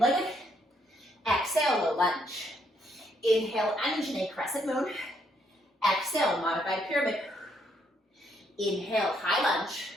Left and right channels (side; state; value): both; normal; correlation 0.72